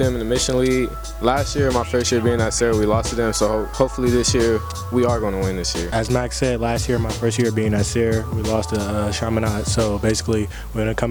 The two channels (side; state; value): both; identical; correlation 1.00